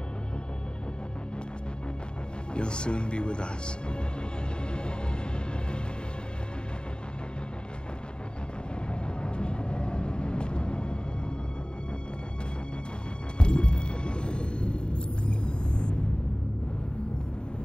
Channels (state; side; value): late; right; 0.049 ms